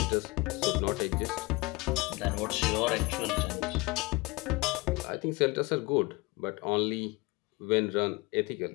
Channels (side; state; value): right; quieter; 23.0 dB